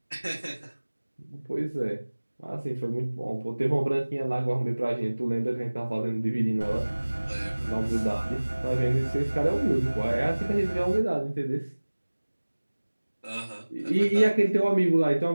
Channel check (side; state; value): both; inverted; correlation -1.00